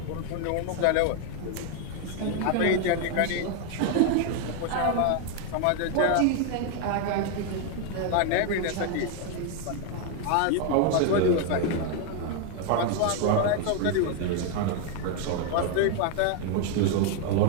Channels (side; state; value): both; different; correlation 0.01